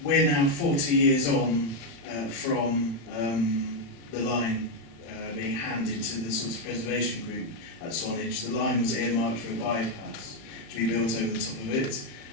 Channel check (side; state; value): right; late; 35 ms